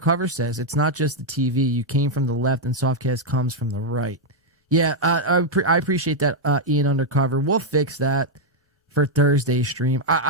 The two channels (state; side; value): normal; both; correlation -0.01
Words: says it's not just the TV. You came from the left and Softcast comes from the right. Yeah, I appreciate that, Ian Undercover. We'll fix that for Thursday's stream.